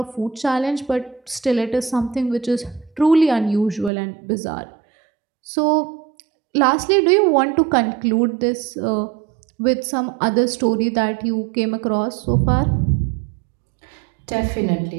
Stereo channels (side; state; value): left; drops out; at 3.9 s